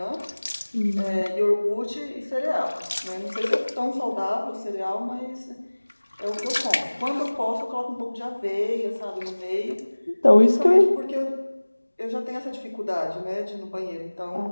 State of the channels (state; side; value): inverted; both; correlation -1.00